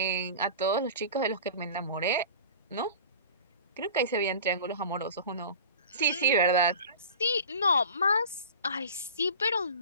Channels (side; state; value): both; inverted; correlation -0.38